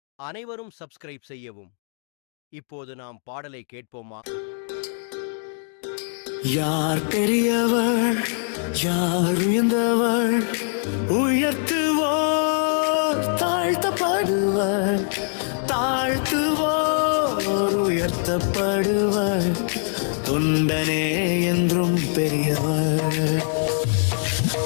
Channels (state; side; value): silent; right; digital silence